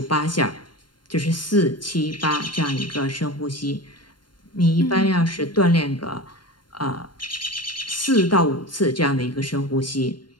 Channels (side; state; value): right; late; 0.72 ms